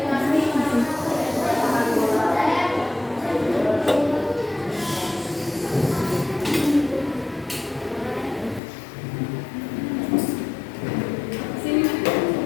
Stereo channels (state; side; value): drops out; right; at 8.6 s